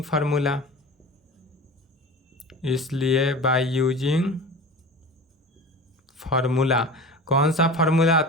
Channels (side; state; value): both; normal; correlation 0.34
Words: फार्मूला, इसलिए बाय यूजिंग फार्मूला, कौन सा फार्मूला,